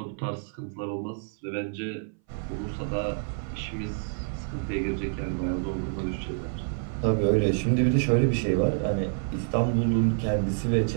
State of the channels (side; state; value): left; silent; 58 dB below the other